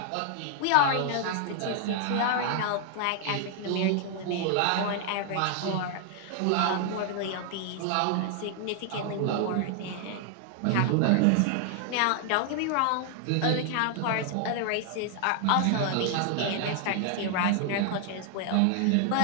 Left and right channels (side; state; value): both; different; correlation 0.00